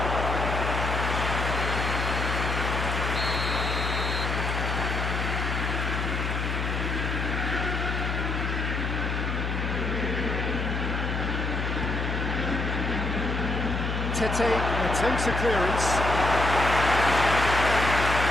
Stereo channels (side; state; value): left; noise; hum, 1 dB below the sound